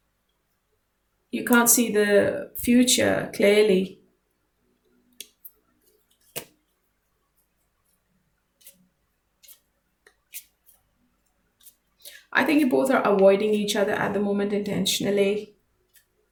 You can't see the future clearly. I think you both are avoiding each other at the moment intentionally.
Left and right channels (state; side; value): identical; both; correlation 1.00